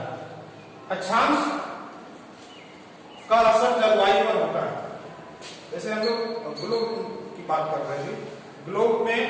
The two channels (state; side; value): identical; both; correlation 1.00